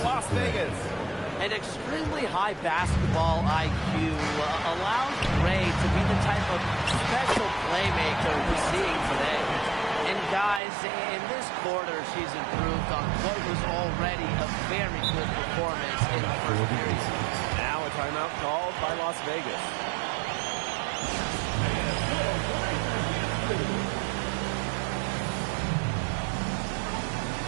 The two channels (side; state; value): left; drops out; at 10.6 s